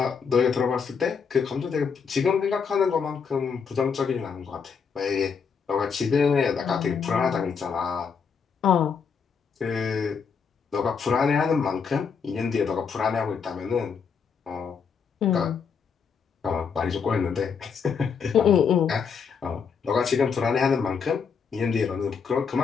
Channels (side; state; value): right; quieter; 6.1 dB